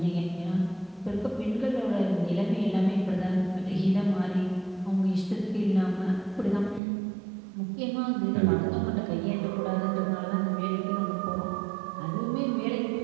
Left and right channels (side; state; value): left; drops out; at 6.8 s